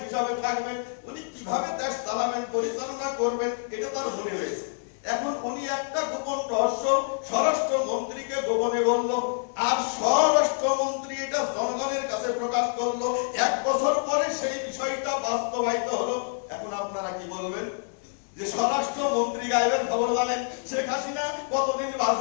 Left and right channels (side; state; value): right; silent; 60 dB below the other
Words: হিসাবে থাকবেন, উনি কিভাবে দেশ চালাবেন, পরিচালনা করবেন, এটা তার মনে রয়েছে। এখন উনি একটা গোপন রহস্য স্বরাষ্ট্রমন্ত্রীকে গোপনে বলল, আর স্বরাষ্ট্রমন্ত্রী এটা জনগণের কাছে প্রকাশ করলো। 1 বছর পরে সেই বিষয়টা বাস্তবায়িত হলো। এখন আপনারা কি বলবেন? যে স্বরাষ্ট্রমন্ত্রী গায়েবের খবর জানেন, শেখ হাসিনা কতদিন